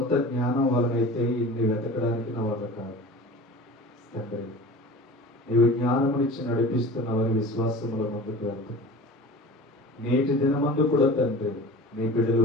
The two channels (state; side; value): normal; both; correlation 0.37